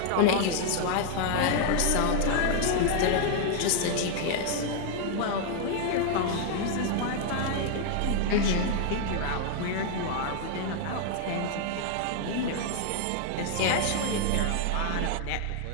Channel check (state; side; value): different; both; correlation 0.00